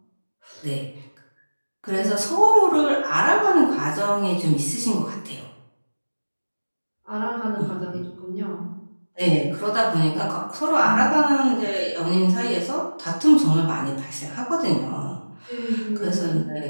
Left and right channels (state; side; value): inverted; both; correlation -1.00